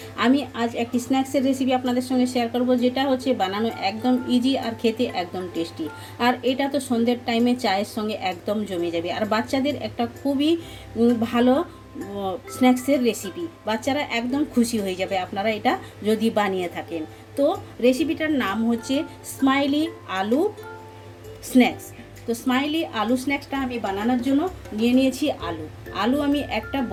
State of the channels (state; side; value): identical; both; correlation 1.00